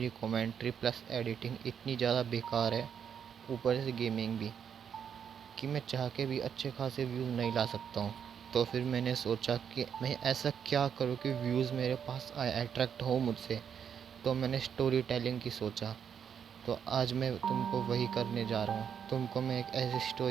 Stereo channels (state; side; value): quieter; left; 7.8 dB